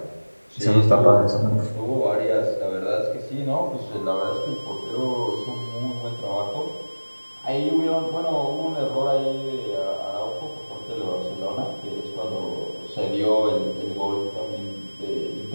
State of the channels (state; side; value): inverted; both; correlation -1.00